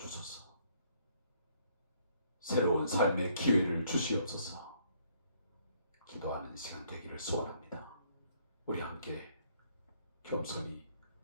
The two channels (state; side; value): inverted; both; correlation -0.66